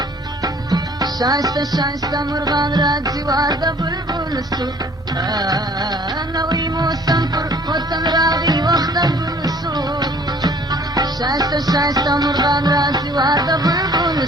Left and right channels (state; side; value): normal; both; correlation 0.54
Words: شایسته شایسته مرغان راځي وار د بلبل سو نوی موسم پر وطن راغی وخته ګل سو شایسته شایسته مرغان راځي وار د بلبل